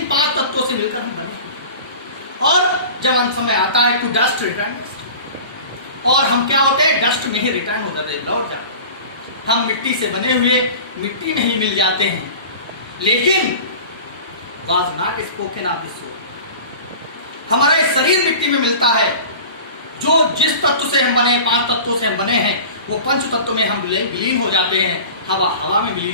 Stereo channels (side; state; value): both; inverted; correlation -0.38